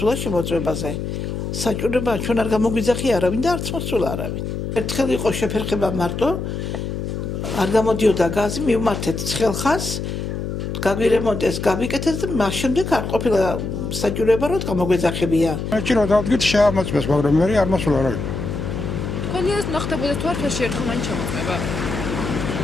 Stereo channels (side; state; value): left; noise; hum, 4 dB below the sound